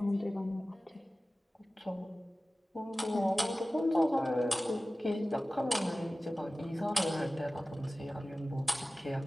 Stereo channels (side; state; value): both; normal; correlation 0.96